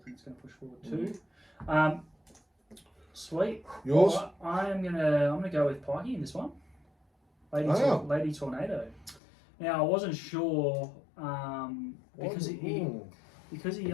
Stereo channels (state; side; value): drops out; right; at 9.2 s